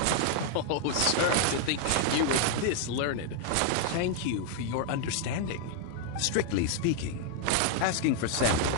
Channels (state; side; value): different; both; correlation 0.00